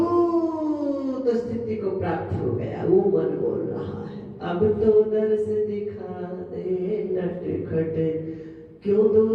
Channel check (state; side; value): identical; both; correlation 1.00